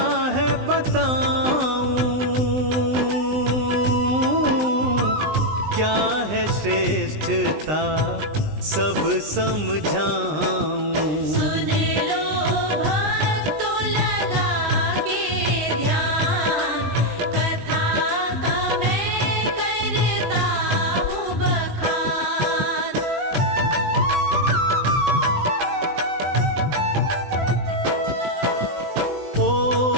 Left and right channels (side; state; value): left; late; 20 ms